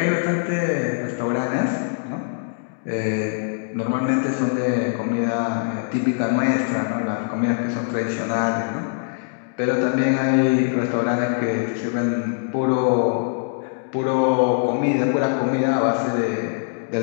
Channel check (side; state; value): right; silent; digital silence